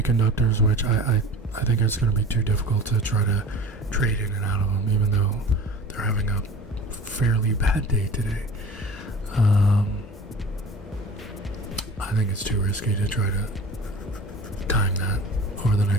which I think it's going to be too difficult to try to trade in and out of them, even though they're having a fairly bad day today. I think it's too risky to try to time that over the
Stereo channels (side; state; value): both; normal; correlation 0.40